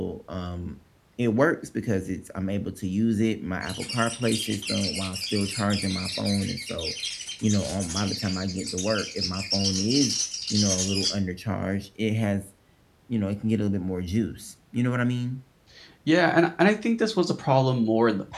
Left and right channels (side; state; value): both; identical; correlation 1.00